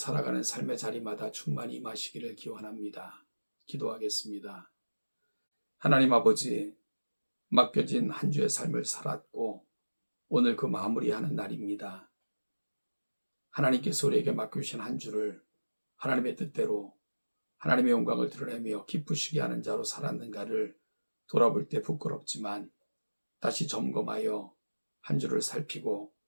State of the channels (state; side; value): inverted; both; correlation -1.00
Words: 삶의 자리마다 충만히 임하시기를 기원합니다. 기도하겠습니다. 하나님 아버지, 맡겨진 한 주의 삶을 살았고 오늘 그 마무리하는 날입니다. 하나님께서 우리에게 맡겨주신 한 주를 하나님의 뜻대로 하나님의 영광을 드러내며 기쁘시게 하는 자로 살았는가를 돌아볼 때 부끄럽지만 다시 점검하여 한 주를 살피고